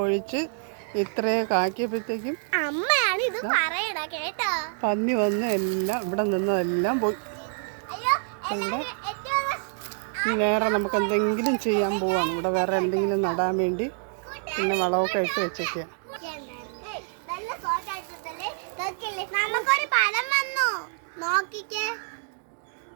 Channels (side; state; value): left; silent; digital silence